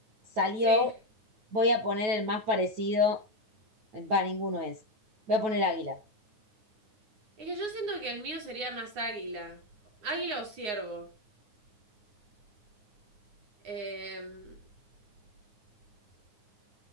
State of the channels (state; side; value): late; left; 9.6 ms